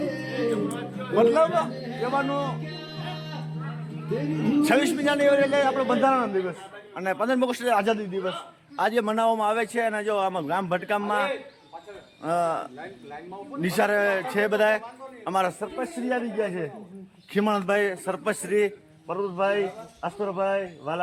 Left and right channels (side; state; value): both; identical; correlation 1.00